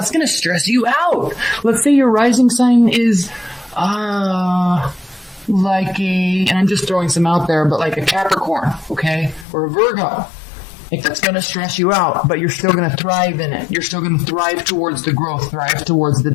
going to stress you out. Let's say your rising sign is, and I'm just throwing some out there, but like a Capricorn, okay? Or a Virgo. Like, that's going to stress you out, but you're still going to thrive in it. You're still going to thrive towards the growth, thrive towards the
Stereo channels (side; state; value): right; drops out; at 9.5 s